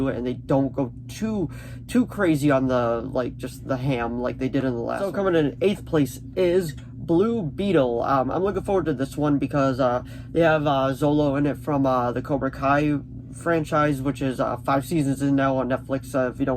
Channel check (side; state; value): both; identical; correlation 1.00